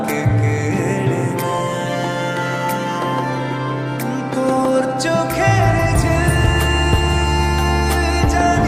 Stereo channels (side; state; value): both; identical; correlation 1.00